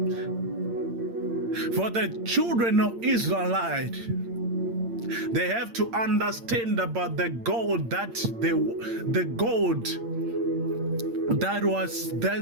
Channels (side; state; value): left; late; 8.7 ms